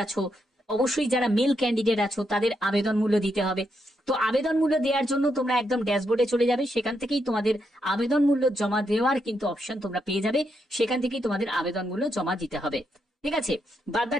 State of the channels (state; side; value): normal; both; correlation 0.80